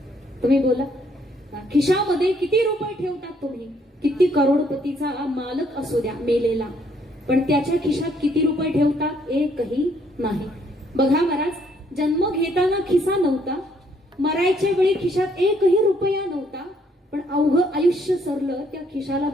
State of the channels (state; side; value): normal; both; correlation 0.68